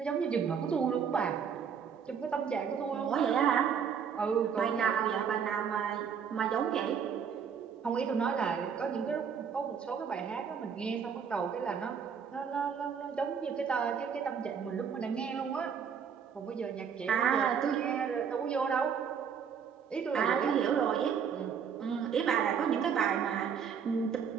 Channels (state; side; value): quieter; left; 7.1 dB